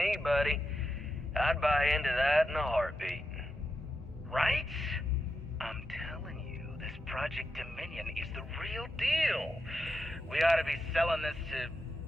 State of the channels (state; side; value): normal; both; correlation 0.87